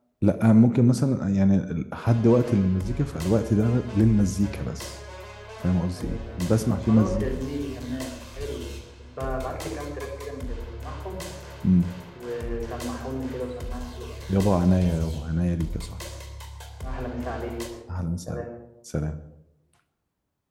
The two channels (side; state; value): both; identical; correlation 1.00